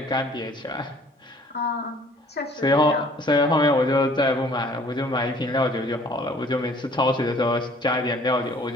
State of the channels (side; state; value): both; normal; correlation 0.55